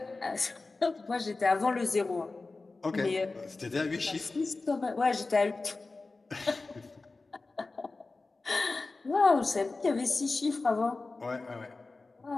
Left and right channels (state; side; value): quieter; right; 3.6 dB